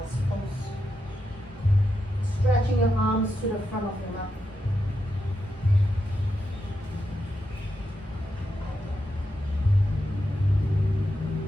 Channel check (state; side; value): normal; both; correlation 0.85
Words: pose. Stretching your arms to the front of your mat.